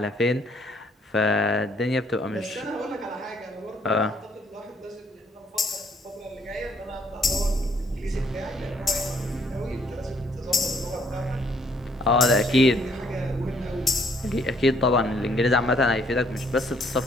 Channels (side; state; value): both; normal; correlation 0.66